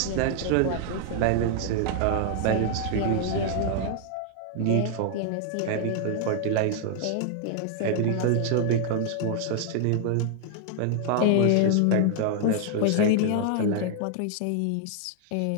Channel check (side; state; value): both; different; correlation 0.00